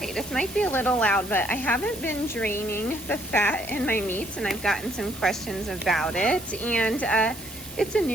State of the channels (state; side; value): noise; right; hiss, 16 dB below the sound